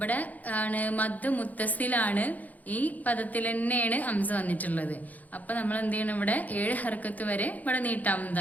ആണ് മദ് മുത്തസിലാണ്, ഈ പദത്തിൽ തന്നെയാണ് ഹംസ വന്നിട്ടുള്ളത്. അപ്പൊ നമ്മൾ എന്ത് ചെയ്യണം, ഇവിടെ 7 ഹർക്കത്ത് വരെ ഇവിടെ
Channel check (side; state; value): right; late; 0.079 ms